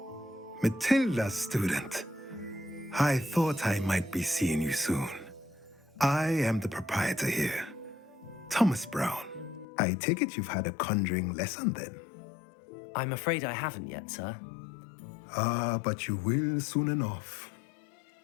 Matilda's student. I thought I might be seeing you soon. I am the proprietor here, Thomas Brown. I take it you've had a conjuring lesson then? I'm afraid I haven't yet, sir. Ah, but you will soon enough.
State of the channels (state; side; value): drops out; right; at 9.7 s